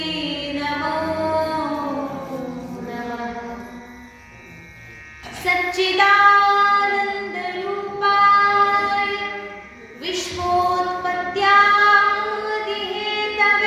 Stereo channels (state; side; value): identical; both; correlation 1.00